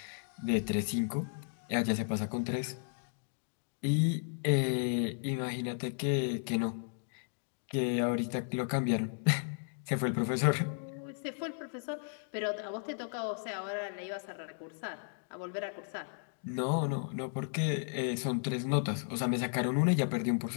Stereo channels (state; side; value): silent; right; digital silence